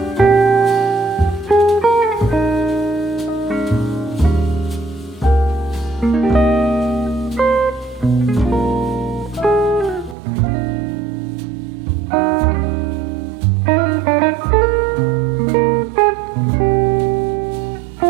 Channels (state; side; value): drops out; left; at 10.2 s